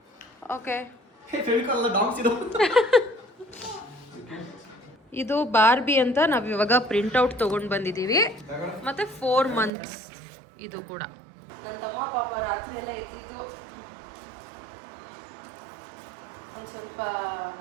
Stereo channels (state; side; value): drops out; left; at 9.7 s